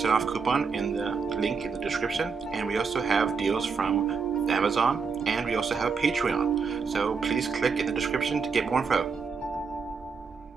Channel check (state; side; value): quieter; left; 5.3 dB